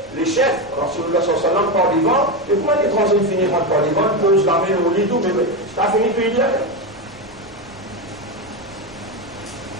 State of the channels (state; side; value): noise; right; rumble, 25 dB below the sound